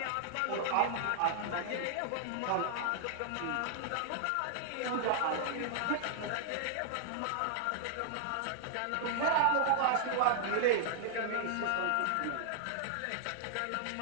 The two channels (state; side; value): different; both; correlation -0.01